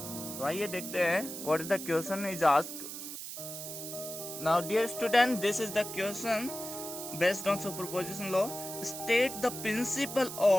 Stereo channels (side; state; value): right; noise; hiss, 8 dB below the sound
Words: तो आइए देखते हैं what is the question is asked. Now dear student, this is the question based on superposition law. State the principle